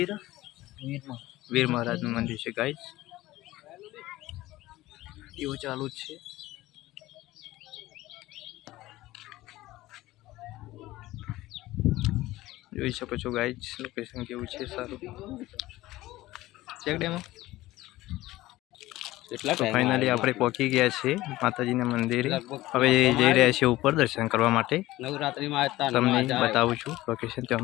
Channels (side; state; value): right; quieter; 17.2 dB